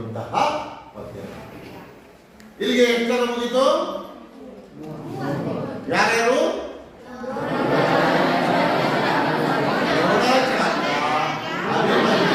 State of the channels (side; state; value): both; identical; correlation 1.00